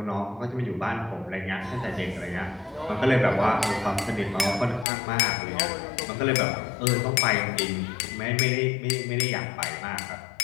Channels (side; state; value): right; drops out; at 4.9 s